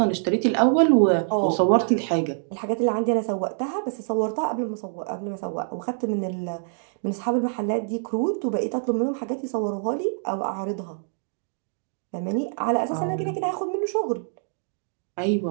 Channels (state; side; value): silent; left; digital silence